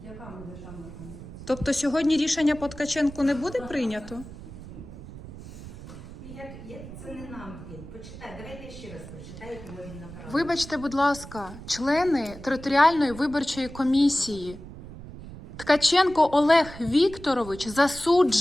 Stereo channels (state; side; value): noise; right; rumble, 14 dB below the sound